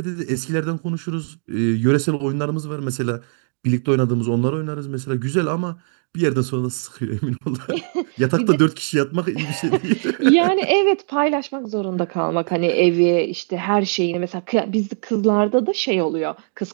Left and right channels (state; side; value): silent; left; 61 dB below the other